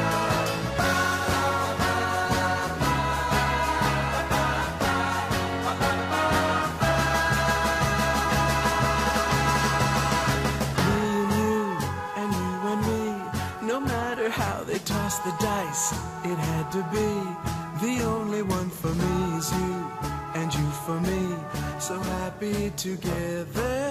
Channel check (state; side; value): identical; both; correlation 1.00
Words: The dice, it had to be. The only one for me is you, and you for me, so happy together,